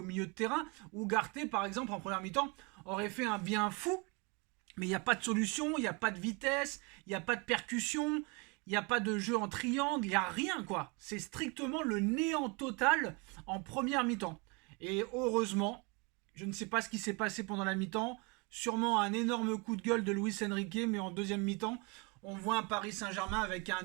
milieu de terrain. Ugarte, par exemple, en première mi-temps, aurait fait un bien fou, mais il n'y a pas de solution, il n'y a pas de vitesse, il n'y a pas de percussion, il n'y a pas de jeu en triangle, il n'y a rien quoi. C'est strictement le néant total en première mi-temps. Et heureusement, je ne sais pas ce qui s'est passé pendant la mi-temps, sûrement un énorme coup de gueule de Luis Enrique, mais en deuxième mi-temps, on voit un Paris Saint-Germain avec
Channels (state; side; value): quieter; left; 30.2 dB